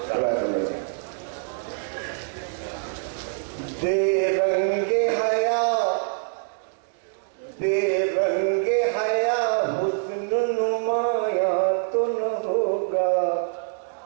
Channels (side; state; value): left; silent; 61 dB below the other